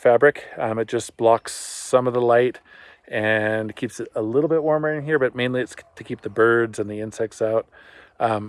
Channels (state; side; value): identical; both; correlation 1.00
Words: It just blocks some of the light and keeps it a little bit warmer in here, but mainly it's to keep the birds and the insects out